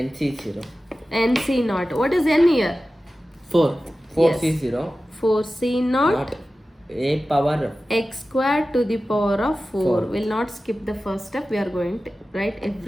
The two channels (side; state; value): both; normal; correlation 0.95